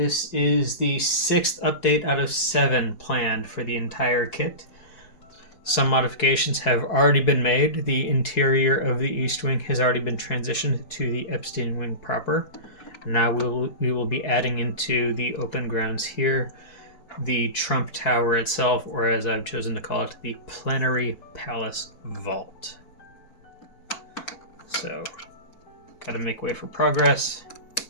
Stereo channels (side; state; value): right; late; 4.7 ms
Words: is the sixth update out of 7 planned for the entire kit. Some modifications have already been made. The interior of the East Wing has already been transitioned to the Epstein Wing proper. Now we will be adding into the open grounds here the Trump Tower itself, or as I've chosen to call it, the Plenary Palace Vault. So, gotta make way for progress.